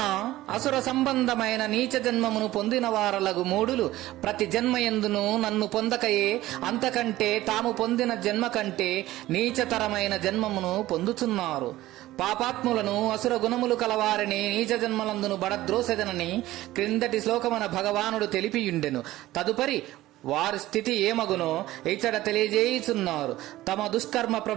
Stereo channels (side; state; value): left; quieter; 16.2 dB